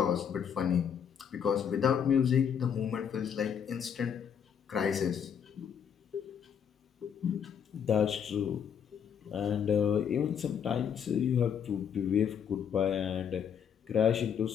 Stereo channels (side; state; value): right; quieter; 7.9 dB